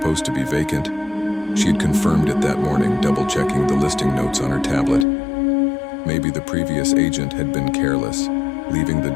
to be vacant. She had confirmed it that morning, double-checking the listing notes on her tablet. Maybe the previous agent had been careless, leaving the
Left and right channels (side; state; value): right; drops out; at 5.1 s